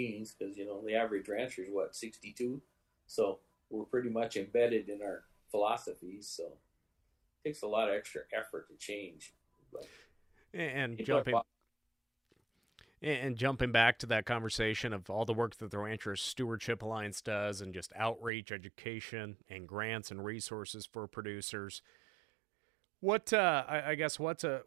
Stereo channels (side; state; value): left; drops out; at 18.3 s